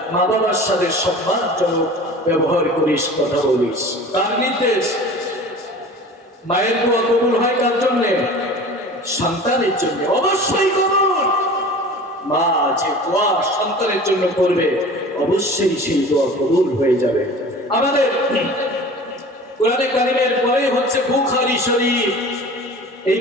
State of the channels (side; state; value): both; normal; correlation 0.40